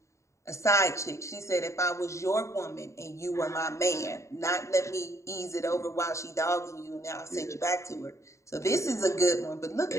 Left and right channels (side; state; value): right; late; 0.14 ms